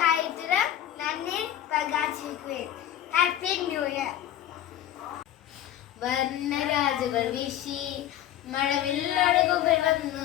കാര്യത്തിലും നന്ദി പ്രകാശിക്കുവേ. Happy new year. വർണ്ണരാജുകൾ വീശി മഴവില്ലഴകുകൾ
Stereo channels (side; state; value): right; quieter; 11.6 dB